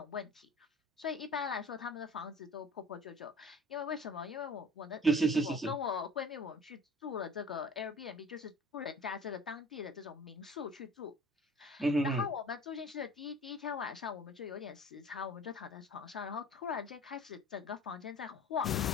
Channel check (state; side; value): normal; both; correlation 0.44